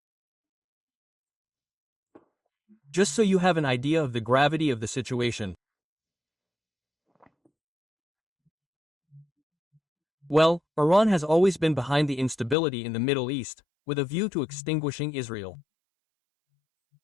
Just so you have an idea of the gravity of the situation. Well, Iran has always been behind the instability in the Middle East, with a view to extinguishing Israel.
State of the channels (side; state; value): right; drops out; at 12.6 s